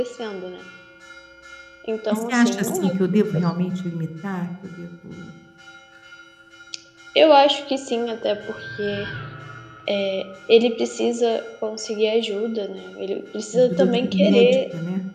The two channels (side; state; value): both; identical; correlation 1.00